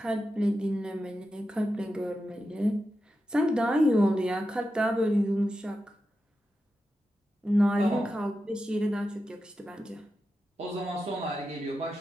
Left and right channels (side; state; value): both; normal; correlation 0.90